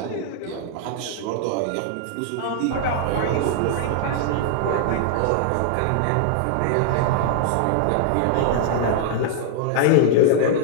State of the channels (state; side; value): different; both; correlation -0.01